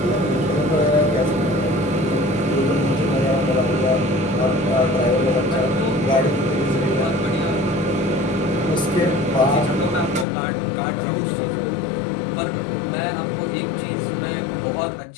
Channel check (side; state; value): right; drops out; at 10.2 s